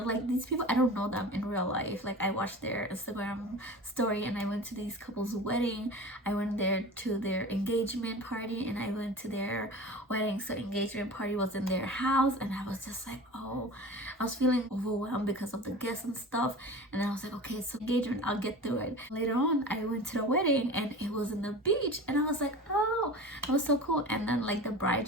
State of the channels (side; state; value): both; normal; correlation 0.35